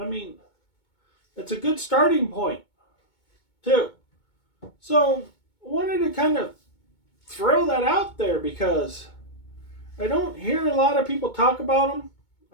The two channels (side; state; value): right; late; 2.2 ms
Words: mean, it's a good starting point, too. So, I wanted to kind of throw that out there because I don't hear a lot of people talk about them.